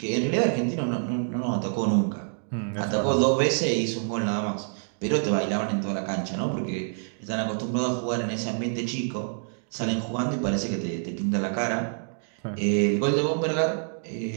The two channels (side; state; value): left; silent; digital silence